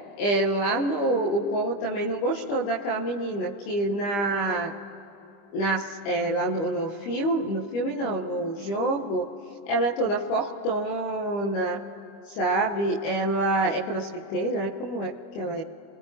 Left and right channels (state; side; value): late; right; 25 ms